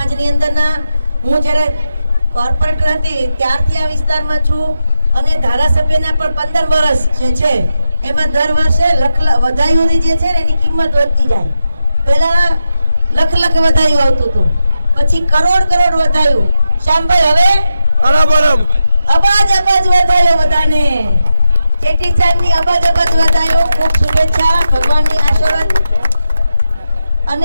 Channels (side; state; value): both; inverted; correlation -0.87